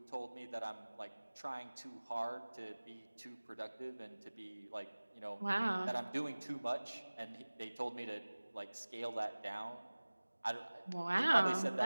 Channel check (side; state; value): both; inverted; correlation -1.00